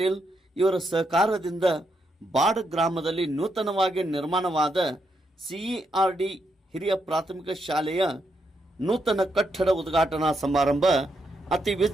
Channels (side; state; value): both; normal; correlation 0.80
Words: ಇವರ ಸಹಕಾರದಿಂದ ಬಾಡ್ ಗ್ರಾಮದಲ್ಲಿ ನೂತನವಾಗಿ ನಿರ್ಮಾಣವಾದ ಸಿಇಆರ್ಡಿ ಹಿರಿಯ ಪ್ರಾಥಮಿಕ ಶಾಲೆಯ ನೂತನ ಕಟ್ಟಡ ಉದ್ಘಾಟನಾ ಸಮಾರಂಭ ಅತಿ